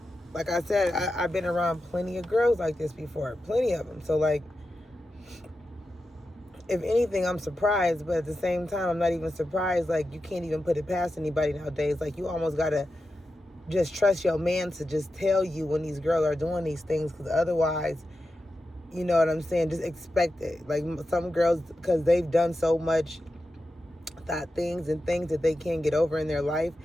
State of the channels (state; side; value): normal; both; correlation 0.91